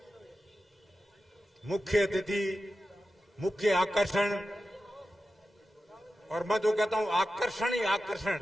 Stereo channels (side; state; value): both; normal; correlation 0.92